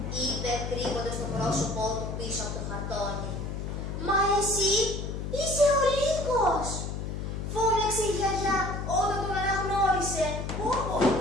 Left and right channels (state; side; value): noise; left; hum, 5 dB below the sound